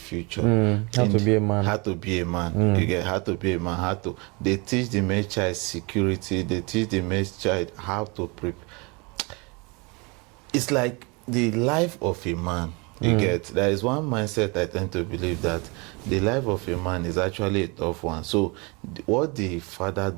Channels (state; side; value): quieter; left; 28.9 dB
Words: How to be a man. How to be a man. You get how to be a man. They teach the male child security. They teach the male child how to prepare. It's like the life of a man. You get, there is one mindset I tend to believe that the life of a man is actually a tough one. So what the father